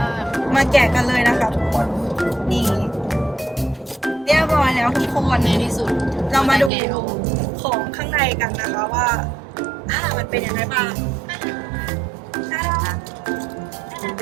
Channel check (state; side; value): drops out; left; at 6.7 s